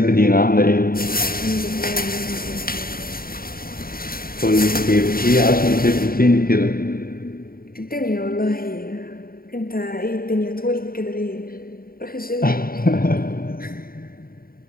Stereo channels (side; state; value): right; late; 0.43 ms